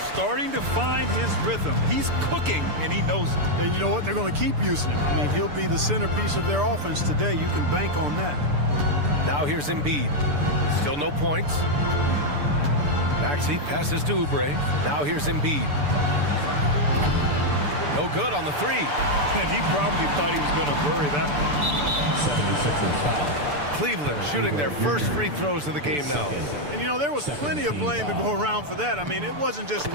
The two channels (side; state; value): left; late; 6.8 ms